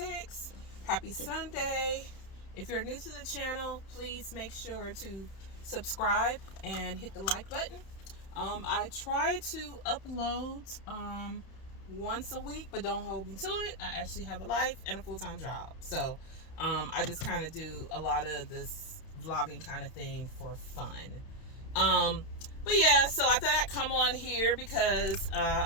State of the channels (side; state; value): right; late; 31 ms